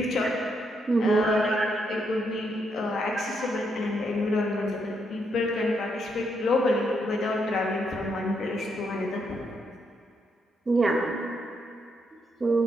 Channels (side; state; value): both; normal; correlation 0.77